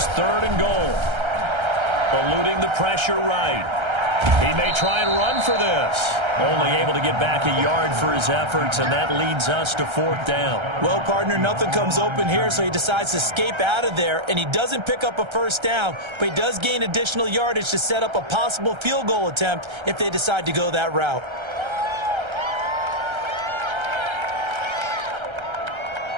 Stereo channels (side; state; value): left; late; 1.3 ms